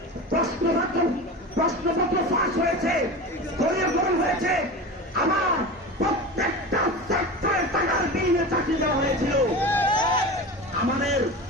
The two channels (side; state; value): both; normal; correlation 0.29